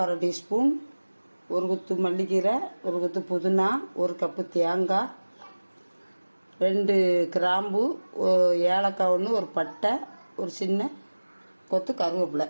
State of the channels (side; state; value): both; inverted; correlation -1.00